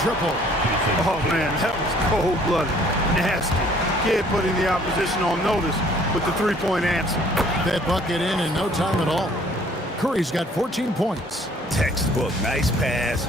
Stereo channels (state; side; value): normal; both; correlation 0.58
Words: Oh, man, that was cold-blooded. Nasty. Kidd putting the opposition on notice with the three-point answer. That bucket in no time at all. Curry's got 14 points. Textbook, nice pass,